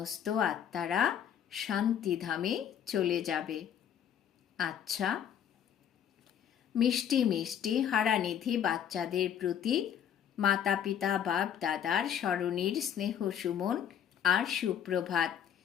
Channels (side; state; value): right; quieter; 9.2 dB